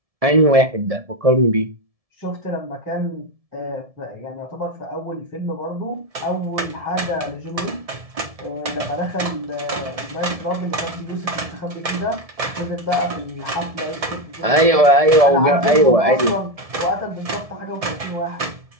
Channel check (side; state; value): left; late; 1.7 ms